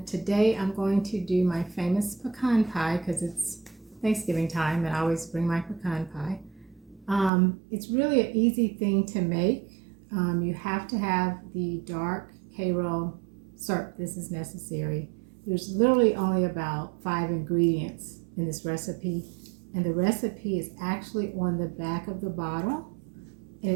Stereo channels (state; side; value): drops out; left; at 7.3 s